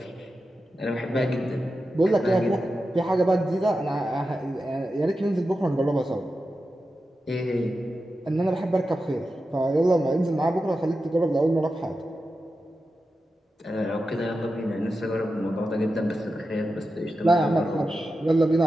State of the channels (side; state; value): both; normal; correlation 0.91